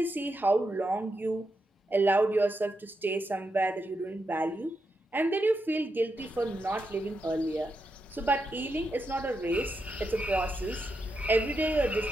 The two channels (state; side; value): normal; both; correlation 0.85